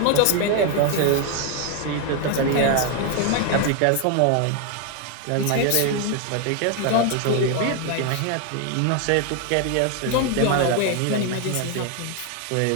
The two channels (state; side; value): different; both; correlation 0.01